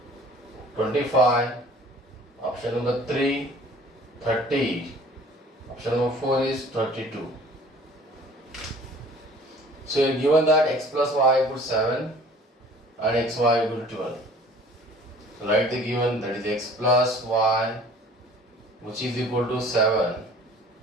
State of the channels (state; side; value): normal; both; correlation 0.50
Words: 25, option number 3 30, option number 4 is 32. So you are given that x plus y equals 7 and xy equals 12. So write the given, that is x plus y which is equal to 7,